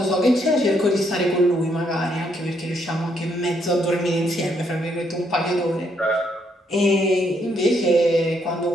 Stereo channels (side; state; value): both; normal; correlation 0.73